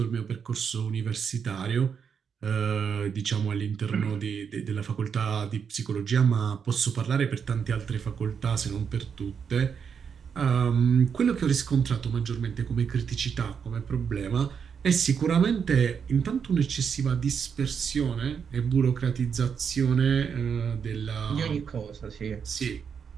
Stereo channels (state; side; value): quieter; left; 6.8 dB